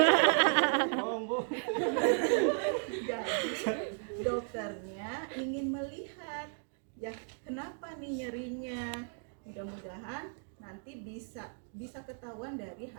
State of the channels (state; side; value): silent; left; 55 dB below the other